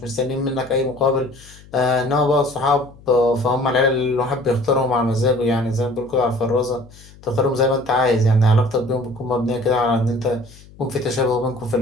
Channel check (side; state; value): left; noise; hum, 23 dB below the sound